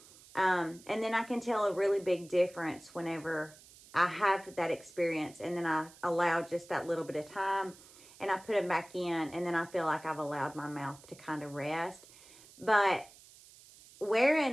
And then I can tell a really big difference whenever I have that experience, and then I allow just that little bit of time and I put them back in, and then I feel like I've allowed my mouth to kind of rest. But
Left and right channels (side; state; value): right; noise; hiss, 22 dB below the sound